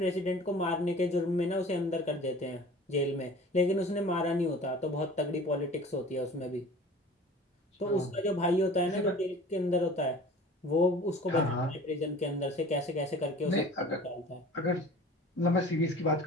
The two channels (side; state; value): both; normal; correlation 0.43